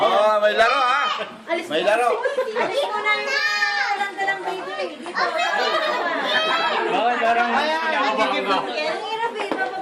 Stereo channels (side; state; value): both; identical; correlation 1.00